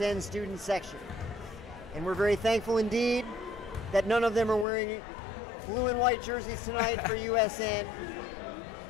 student section. And we're very thankful indeed that none of them are wearing blue and white jerseys tonight for USN,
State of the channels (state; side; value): drops out; right; at 4.7 s